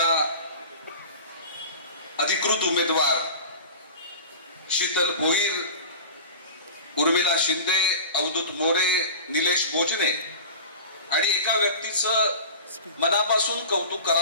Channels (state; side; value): inverted; both; correlation -0.35